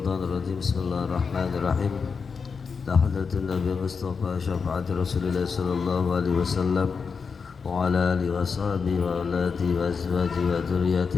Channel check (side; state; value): right; quieter; 5.5 dB